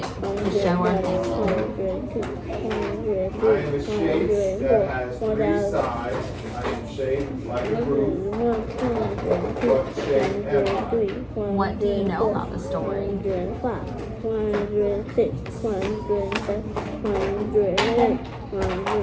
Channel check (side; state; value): both; identical; correlation 1.00